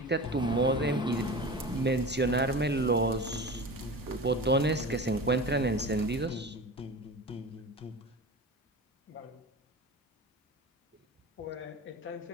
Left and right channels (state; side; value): normal; both; correlation 0.32